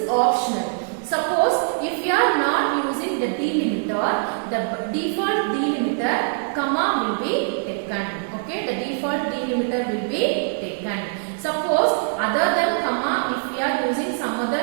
optional. Suppose if we are not using the delimiter, the default delimiter comma will be taken. Okay, the default delimiter will be taken. Suppose other than comma, if we are using some other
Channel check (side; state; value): left; silent; digital silence